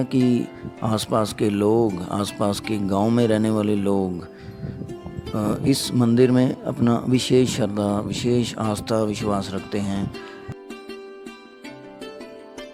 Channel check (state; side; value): identical; both; correlation 1.00